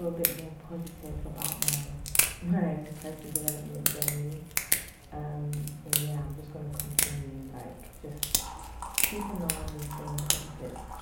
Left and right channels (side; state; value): both; identical; correlation 1.00